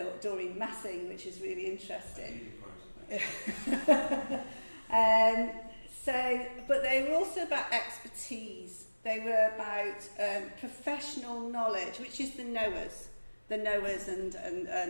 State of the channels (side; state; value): both; inverted; correlation -1.00